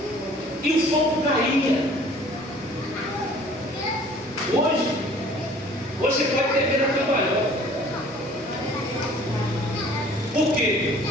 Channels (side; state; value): both; normal; correlation 0.52